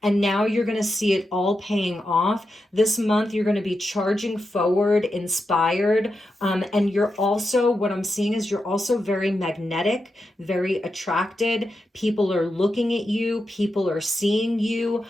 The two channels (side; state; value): both; normal; correlation 0.88